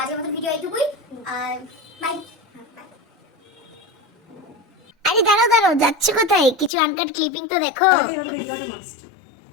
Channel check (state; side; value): drops out; right; at 6.7 s